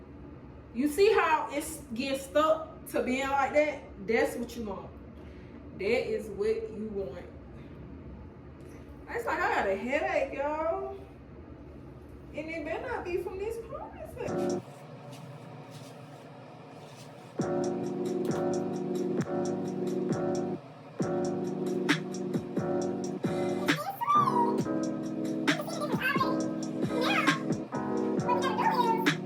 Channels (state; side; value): identical; both; correlation 1.00